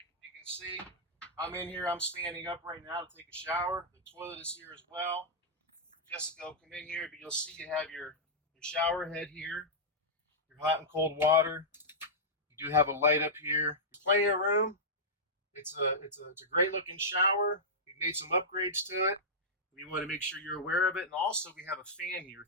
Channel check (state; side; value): normal; both; correlation -0.11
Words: You can see I'm in here. I'm standing up right now to take a shower. The toilet is here as well. Jessica will come in here, but you'll see you have your shower head here, your hot and cold water. You do have a light up here. Plenty of room. It's a great looking shower. We've made some upgrades to it. We want to make sure you're aware of it. And also we have a fan here,